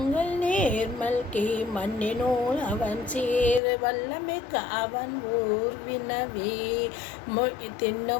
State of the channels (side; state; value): right; drops out; at 3.6 s